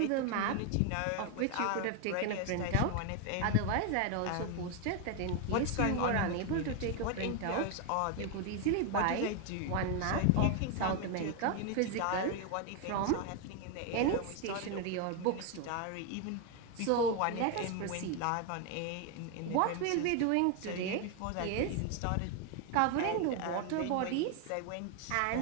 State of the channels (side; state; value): both; different; correlation 0.01